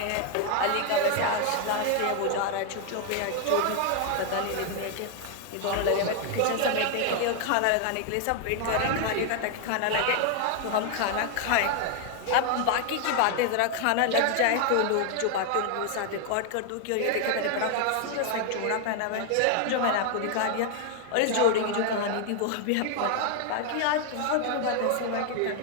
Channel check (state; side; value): different; both; correlation 0.00